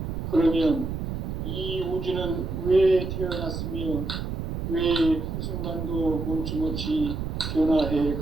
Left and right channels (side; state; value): right; noise; rumble, 4 dB below the sound